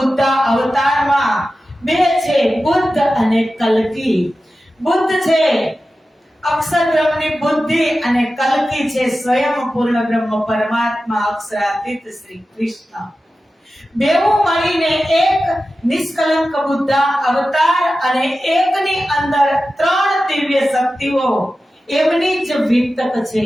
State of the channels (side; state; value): both; normal; correlation 0.94